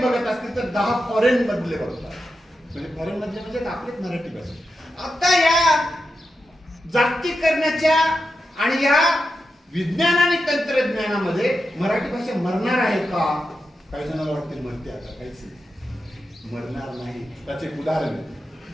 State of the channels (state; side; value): normal; both; correlation 0.88